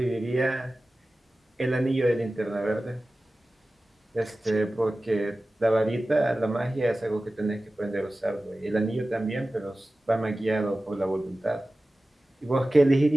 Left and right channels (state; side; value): normal; both; correlation 0.96